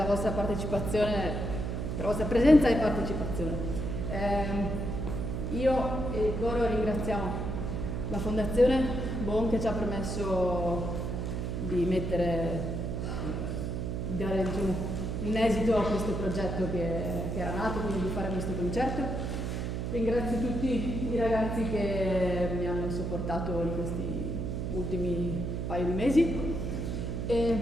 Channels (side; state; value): right; noise; hum, 2 dB below the sound